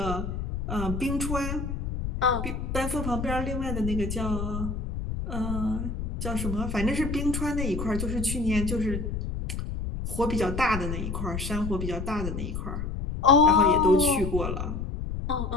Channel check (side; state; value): left; noise; rumble, 4 dB below the sound